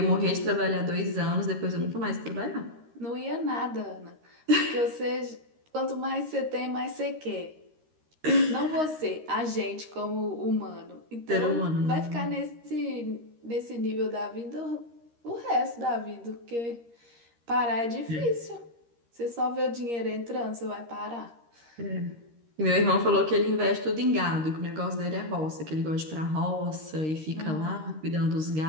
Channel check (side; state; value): left; late; 13 ms